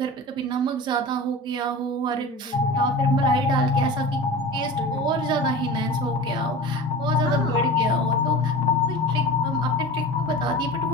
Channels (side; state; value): both; normal; correlation 0.34